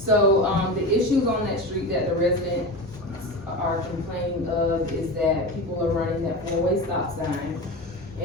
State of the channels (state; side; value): normal; both; correlation 0.26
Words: the issues on that street that the residents are complaining of is that people are running that 4-way stop sign.